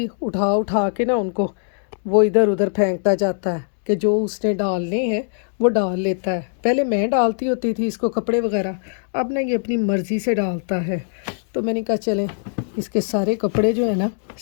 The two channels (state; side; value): silent; right; digital silence